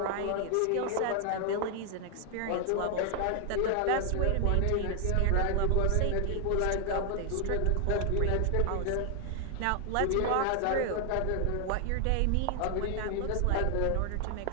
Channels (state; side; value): different; both; correlation 0.00